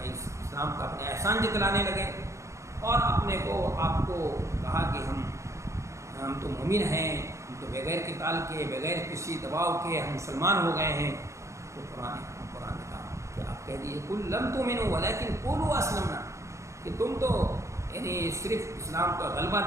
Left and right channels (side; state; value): left; late; 0.14 ms